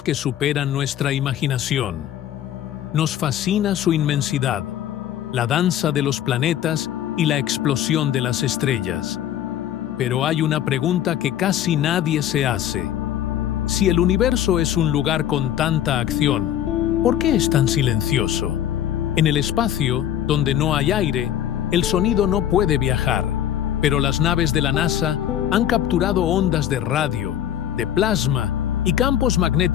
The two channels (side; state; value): right; quieter; 11.0 dB